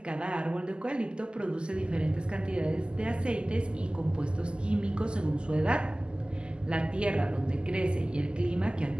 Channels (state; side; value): late; left; 0.049 ms